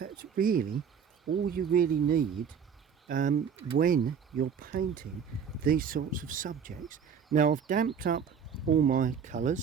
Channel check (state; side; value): quieter; left; 7.1 dB